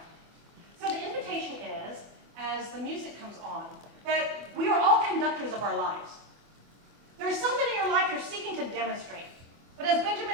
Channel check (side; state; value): left; late; 24 ms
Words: So the invitation is, as the music comes on, that we are all conductors of our lives. There's something in your life you're seeking to demonstrate. But as